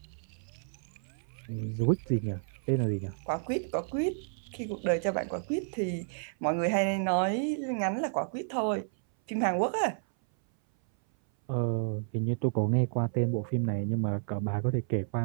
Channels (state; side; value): silent; left; 57 dB below the other